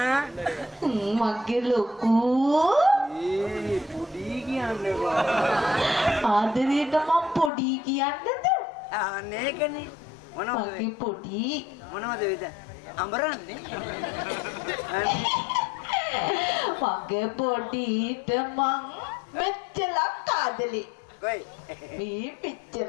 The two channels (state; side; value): drops out; right; at 7.5 s